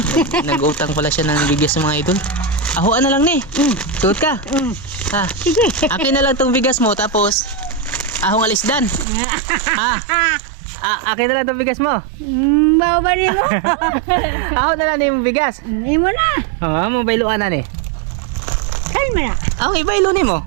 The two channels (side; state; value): left; drops out; at 9.1 s